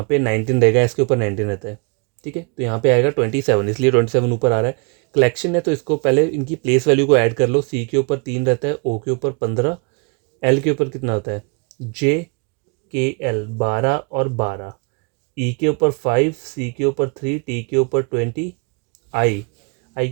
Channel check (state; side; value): quieter; left; 34.6 dB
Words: पे 19 रहेगा, इसके ऊपर 19 रहता है, ठीक है। तो यहाँ पे आएगा 27, इसलिए 27 ऊपर आ रहा है। कलेक्शन है तो इसको पहले इनकी प्लेस वैल्यू को ऐड कर लो, सी के ऊपर 3 रहता है, ओ के ऊपर 15, एल के ऊपर कितना होता है JKL 12 और 12, ई के ऊपर 5, सी के ऊपर 3, टी के ऊपर 20, आई आई